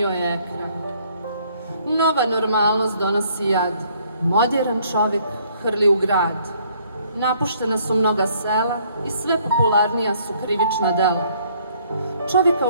je ekran. Nova normalnost donosi jad, modern čovjek hrli u grad. Napuštena su mnoga sela i sve popularnija su krivična dela. Čovjeka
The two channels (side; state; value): both; inverted; correlation -0.64